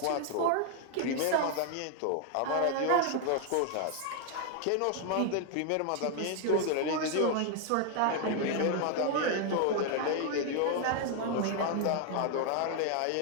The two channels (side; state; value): both; different; correlation 0.00